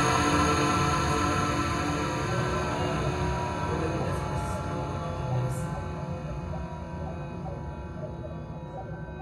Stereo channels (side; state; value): both; identical; correlation 1.00